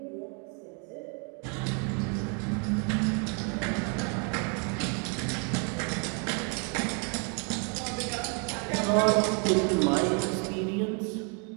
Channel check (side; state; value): left; quieter; 37.6 dB